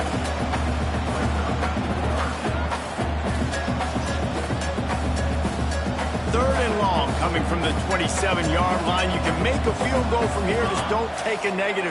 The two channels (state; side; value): identical; both; correlation 1.00